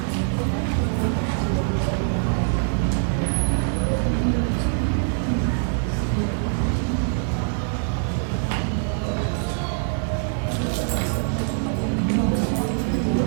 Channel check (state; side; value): silent; left; 63 dB below the other